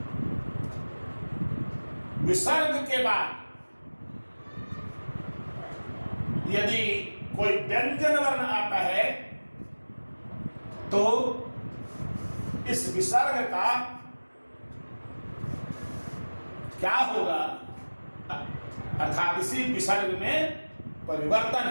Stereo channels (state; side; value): inverted; both; correlation -1.00